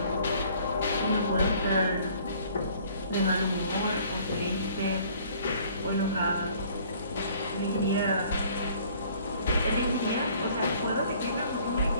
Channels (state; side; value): inverted; both; correlation -0.56